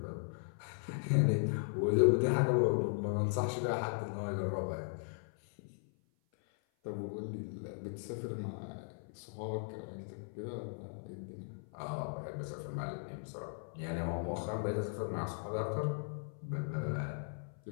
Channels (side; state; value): right; silent; 53 dB below the other